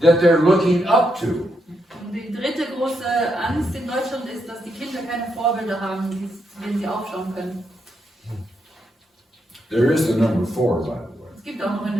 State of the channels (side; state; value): both; normal; correlation 0.81